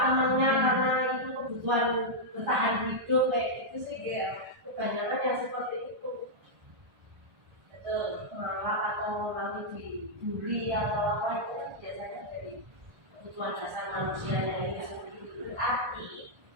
temennya karena itu kebutuhan bertahan hidup kayak gitu sih ya. Kebanyakan yang seperti itu malah atau nanti dibully atau apa itu biasanya dari kebutuhan dasar manusianya itu seperti itu. Berarti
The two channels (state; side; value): late; left; 1.4 ms